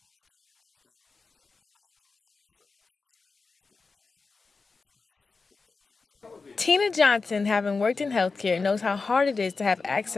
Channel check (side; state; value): right; quieter; 4.3 dB